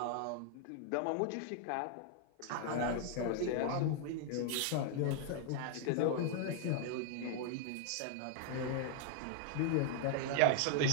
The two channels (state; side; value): different; both; correlation 0.00